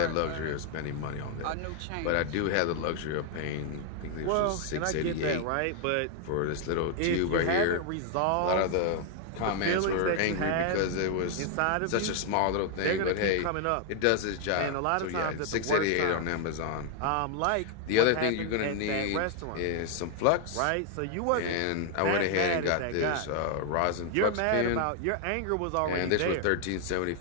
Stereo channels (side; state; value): both; different; correlation 0.00